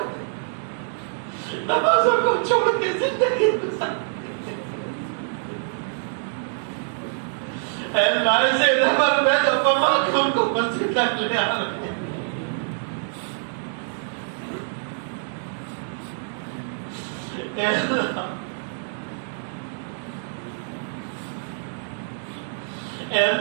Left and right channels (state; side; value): silent; left; digital silence